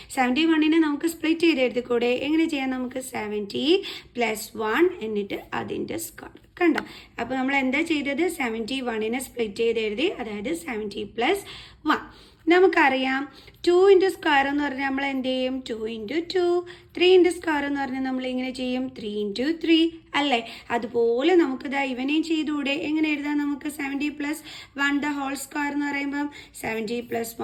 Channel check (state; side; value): identical; both; correlation 1.00